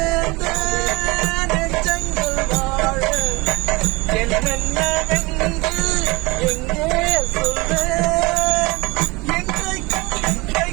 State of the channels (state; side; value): quieter; left; 24.6 dB